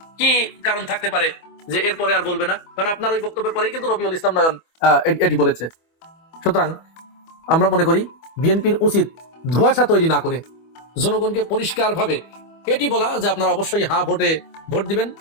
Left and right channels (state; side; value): late; right; 25 ms